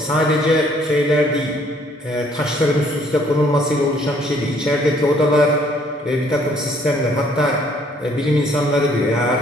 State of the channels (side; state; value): both; normal; correlation 0.63